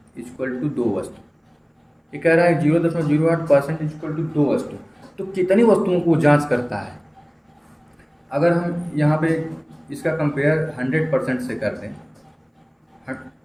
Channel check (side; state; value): both; identical; correlation 1.00